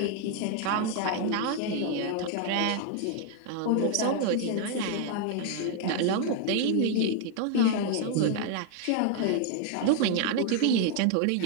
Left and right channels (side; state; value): both; different; correlation 0.00